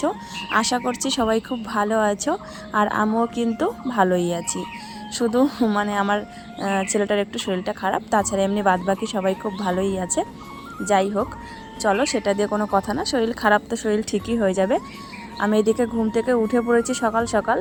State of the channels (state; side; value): identical; both; correlation 1.00